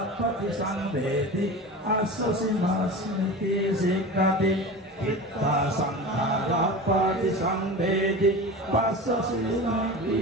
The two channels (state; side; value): normal; both; correlation 0.31